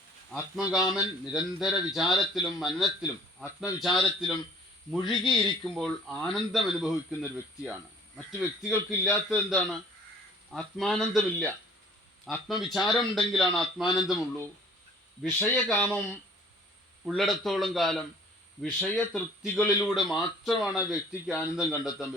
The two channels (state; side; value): normal; both; correlation 0.52